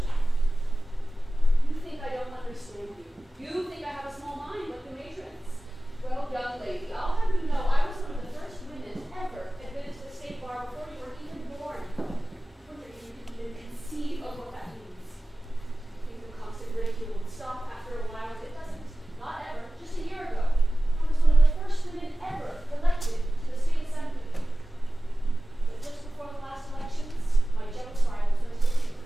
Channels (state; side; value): normal; both; correlation 0.96